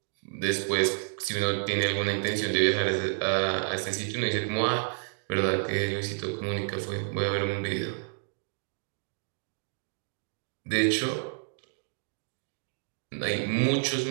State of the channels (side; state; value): left; silent; 58 dB below the other